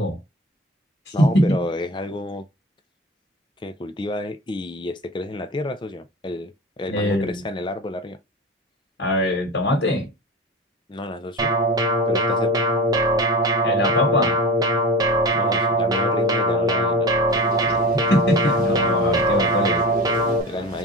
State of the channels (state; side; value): normal; both; correlation 0.30